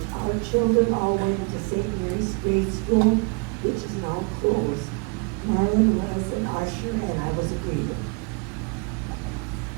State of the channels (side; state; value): left; quieter; 31.5 dB